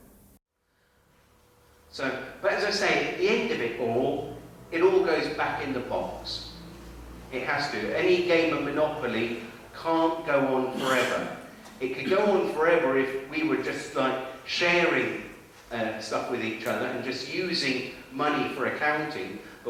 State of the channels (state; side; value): identical; both; correlation 1.00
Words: So, but as I say, at the end of it all goes back in the box. It has to. Any game of Monopoly can't go on forever. It could go on forever if we were just like sharing stuff with each other and just using money for accounting.